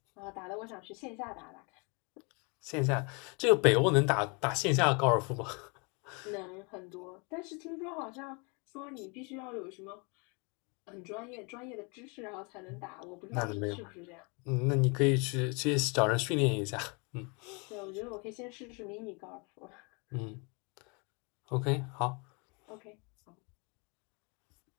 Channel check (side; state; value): right; quieter; 32.1 dB